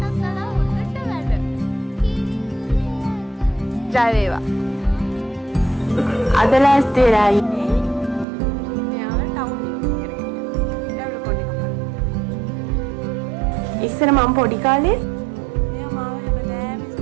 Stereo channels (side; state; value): left; drops out; at 8.2 s